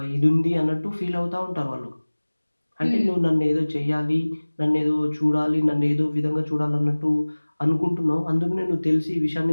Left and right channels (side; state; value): both; inverted; correlation -1.00